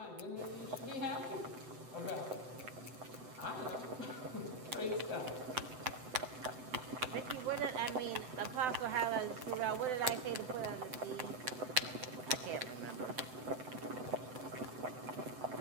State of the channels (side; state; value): left; late; 7.8 ms